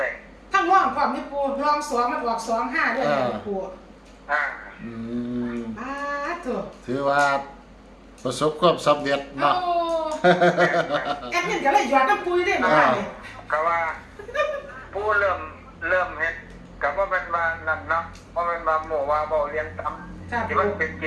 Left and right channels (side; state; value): both; identical; correlation 1.00